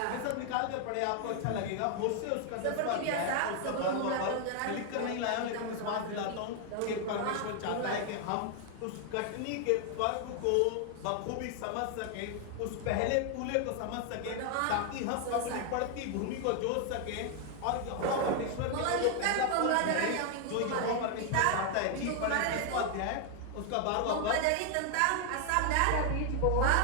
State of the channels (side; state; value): both; different; correlation 0.00